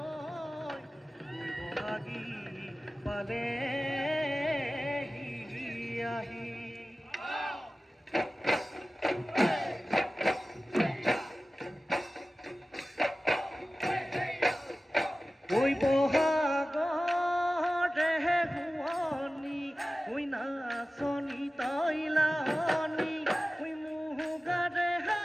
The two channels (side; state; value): both; normal; correlation 0.96